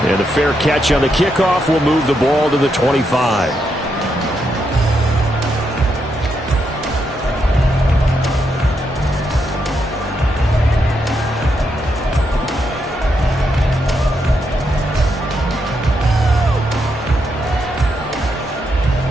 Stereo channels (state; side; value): normal; both; correlation 0.81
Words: And a fair catch on the kickoff will move the ball to the 25.